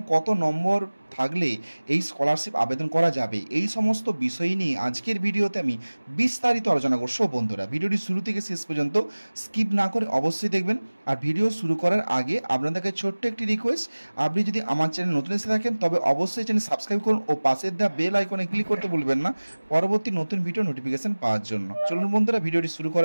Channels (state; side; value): inverted; both; correlation -1.00